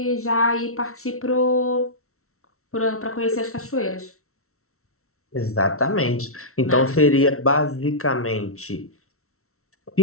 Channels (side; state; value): right; late; 0.63 ms